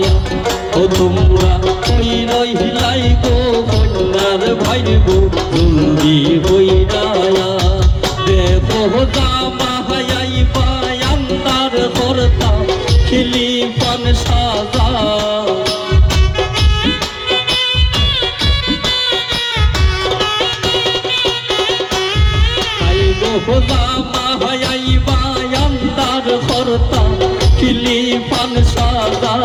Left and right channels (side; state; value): both; identical; correlation 1.00